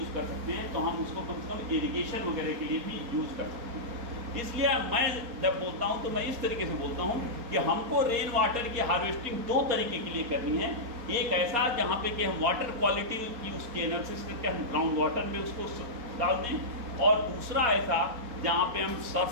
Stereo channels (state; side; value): late; left; 4.3 ms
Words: कर सकते हैं, तो हम उसको कम से कम इरिगेशन वगैरह के लिए भी यूज़ कर सकते हैं। इसलिए मैं जब बोलता हूँ तो मैं इस तरीके से बोलता हूँ कि हमको रेन वाटर की हार्वेस्टिंग दो तरीके के लिए करनी है। एक ऐसा जहाँ पे कि हम वाटर क्वालिटी की उसकी एनालिसिस करके हम ग्राउंड वाटर में उसको डाल दें, और दूसरा ऐसा जहाँ पे हम